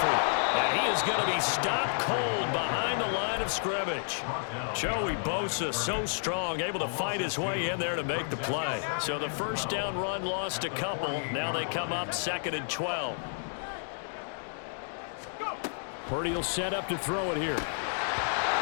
And he is going to be stopped cold behind the line of scrimmage. Joey Bosa so strong, able to fight his way in there to make the play. So the first down run lost a couple. Now they come up 2nd and 12. Purdy will set up to throw it here.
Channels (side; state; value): right; silent; digital silence